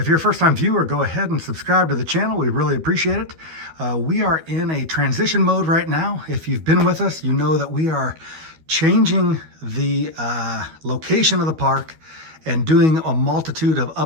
you're a first-time viewer, go ahead and subscribe to the channel. We really appreciate it. We are in a transition mode right now. If you've been with us, you know that we are changing the location of the park and doing a multitude of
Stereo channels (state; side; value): late; left; 12 ms